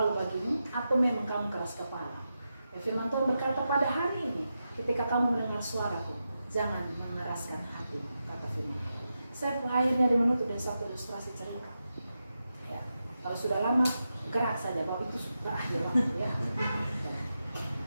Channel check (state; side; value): inverted; both; correlation -0.89